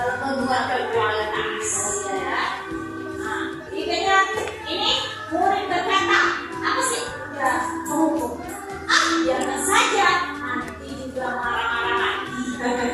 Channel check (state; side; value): identical; both; correlation 1.00